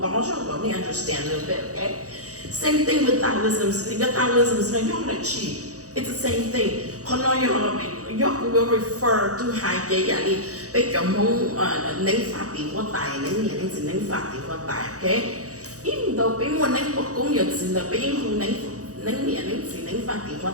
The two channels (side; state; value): left; late; 0.66 ms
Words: tao cho tao need understand a little bit, okay? Same thing with Taoism. The Taoism is not chi. It's the same thing. Kono you will refer to hai cái gì bây giờ mong nên phát triển của tài nên phát triển của tài, okay? Even though people want to cũng nhận sự là people who nấy phát triển phát